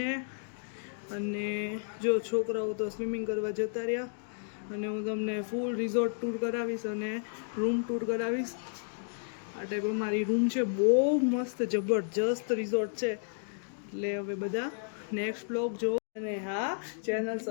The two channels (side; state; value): right; silent; digital silence